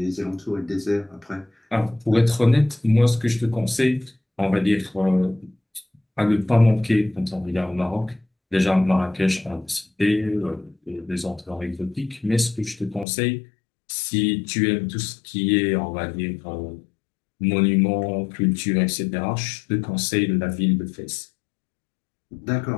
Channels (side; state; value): right; drops out; at 13.1 s